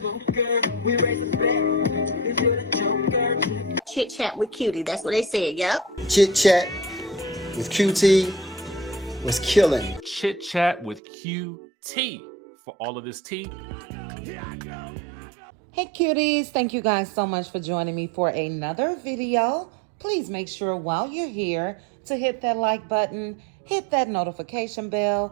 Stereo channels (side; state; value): left; drops out; at 11.0 s